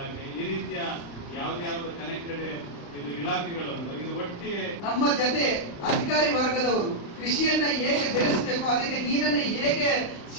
ಈ ರೀತಿಯ ಯಾವ್ದು ಕನೆಕ್ಟೆಡ್ ಇದು ಇಲಾಖೆಗಳು ಇದು ಒಟ್ಟಿಗೆ ನಮ್ಮ ಜೊತೆ ಅಧಿಕಾರಿ ವರ್ಗದವರು ಕೃಷಿಯನ್ನ ಹೇಗೆ ಬೆಳೆಸಬೇಕು, ಅದಕ್ಕೆ ನೀರನ್ನ ಹೇಗೆ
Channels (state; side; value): late; right; 35 ms